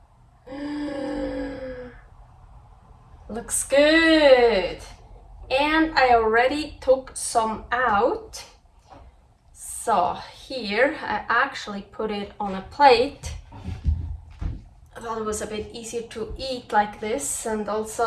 Looks good. And I already took some out. So here I actually put it on a plate. I thought it was a bit easier to eat like this, and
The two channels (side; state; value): both; identical; correlation 1.00